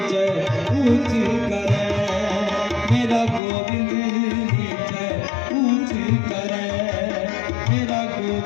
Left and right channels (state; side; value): drops out; right; at 3.4 s